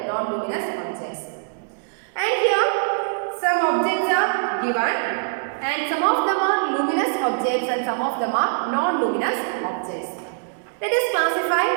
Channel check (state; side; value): silent; left; digital silence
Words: non-luminous objects. And here some objects are given, and some of them are luminous objects and some of them are non-luminous objects. Let us